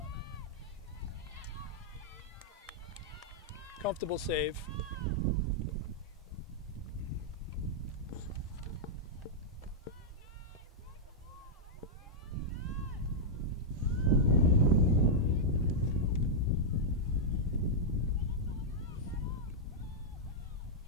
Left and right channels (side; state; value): both; normal; correlation -0.06